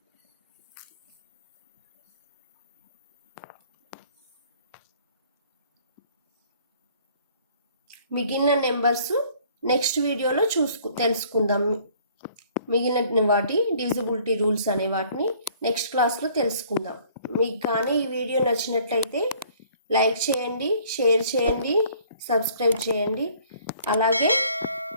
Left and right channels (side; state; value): both; inverted; correlation -0.57